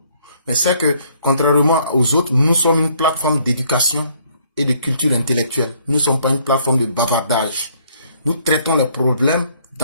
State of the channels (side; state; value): both; inverted; correlation -0.65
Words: Mais c'est que, contrairement aux autres, nous sommes une plateforme d'éducation et de culture intellectuelle. Nous ne sommes pas une plateforme de bavardage. Nous traitons les problèmes